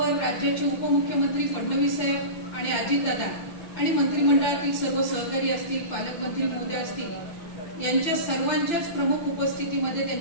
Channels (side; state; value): right; late; 5.9 ms